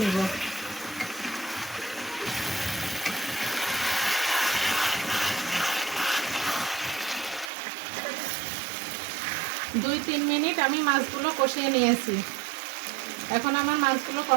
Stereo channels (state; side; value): drops out; left; at 7.5 s